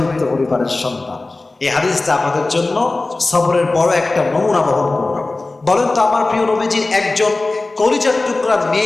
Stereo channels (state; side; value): quieter; right; 3.2 dB